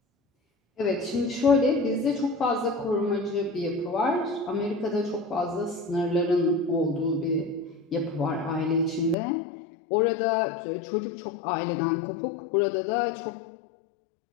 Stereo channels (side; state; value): right; drops out; at 9.2 s